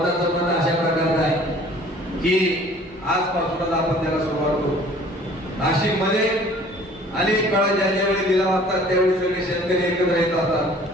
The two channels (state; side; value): normal; both; correlation 0.51